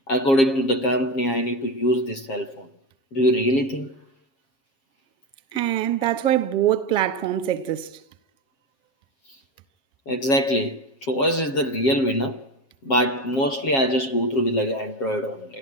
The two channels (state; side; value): late; right; 7.4 ms